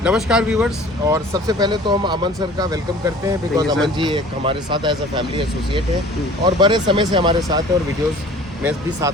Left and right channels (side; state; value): both; normal; correlation 0.47